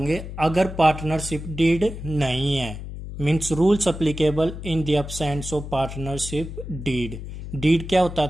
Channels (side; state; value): left; noise; hum, 9 dB below the sound